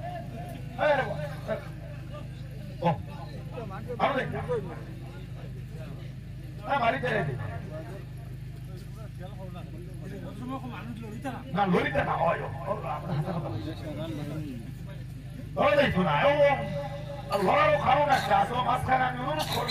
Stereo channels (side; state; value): both; identical; correlation 1.00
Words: বাড়িতে না লড়িতে না হয় লড়ারও কারণ একটা আছে। মাঝখানে আমি অনুরোধ